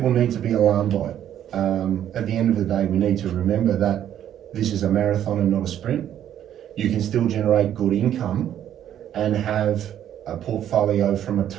need to be alarmed by it. At the end of the day, we need to remember that this is a marathon and not a sprint. You can still generate good income and have a portfolio from a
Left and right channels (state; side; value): quieter; left; 10.6 dB